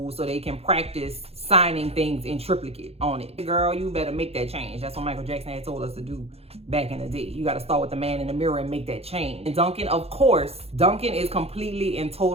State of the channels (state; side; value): late; left; 0.29 ms